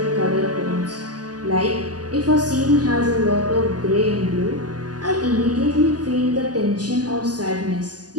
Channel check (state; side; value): late; left; 0.69 ms